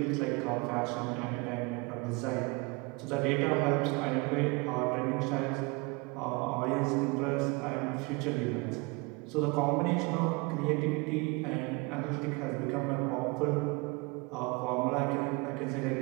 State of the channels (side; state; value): left; quieter; 27.6 dB